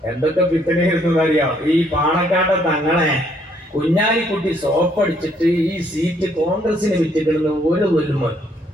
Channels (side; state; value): both; normal; correlation 0.68